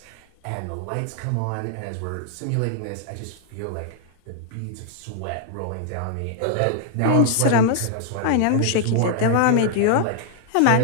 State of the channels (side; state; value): both; different; correlation 0.00